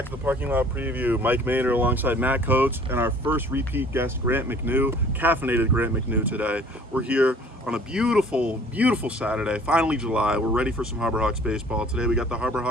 to the Parking Lot Preview. Mike Maynard alongside Matt Coates and our first repeat guest, Grant McNew, caffeinated Grant McNew today. We're here on a beautiful, beautiful Saturday, finally July. We're ready for some Harbor Hawks baseball. Today we got the Harbor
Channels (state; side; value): normal; both; correlation 0.52